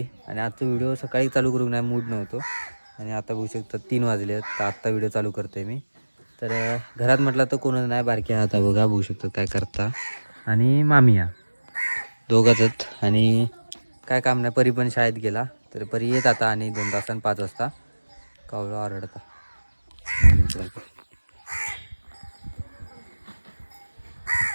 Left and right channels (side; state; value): both; inverted; correlation -1.00